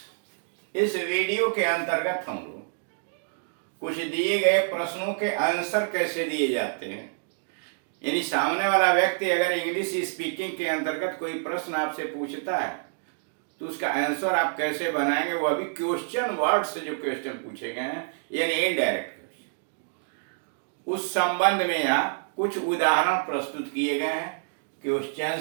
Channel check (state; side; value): silent; left; digital silence